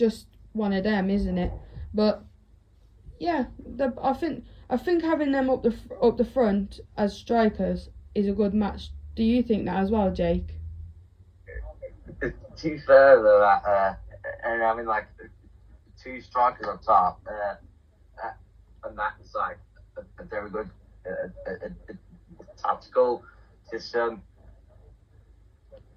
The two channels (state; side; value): identical; both; correlation 1.00